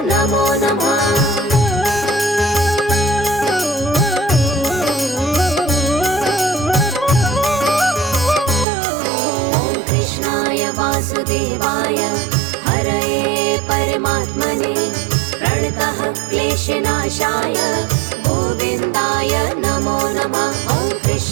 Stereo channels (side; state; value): left; drops out; at 8.7 s